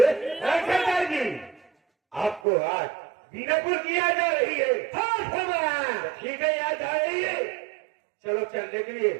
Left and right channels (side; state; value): left; drops out; at 2.4 s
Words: सरदार जी आपको आज बीनापुर की याद आ रही है? हाँ ठीक है, याद आ रही है। चलो चलने के लिए